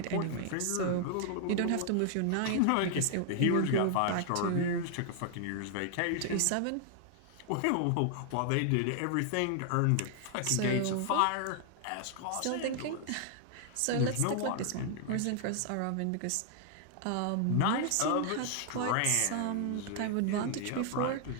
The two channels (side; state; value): both; different; correlation 0.00